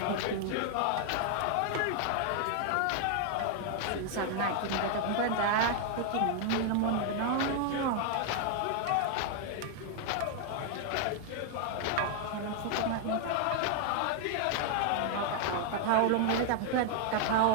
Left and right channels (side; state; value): both; different; correlation 0.00